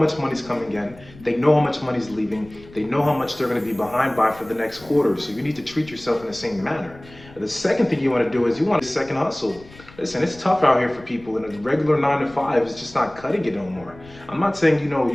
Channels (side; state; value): left; noise; rumble, 22 dB below the sound